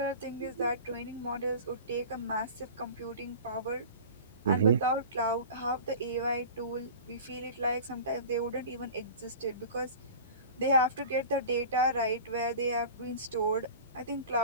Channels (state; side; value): inverted; both; correlation -0.38